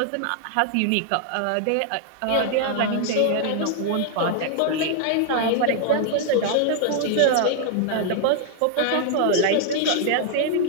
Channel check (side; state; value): both; different; correlation 0.00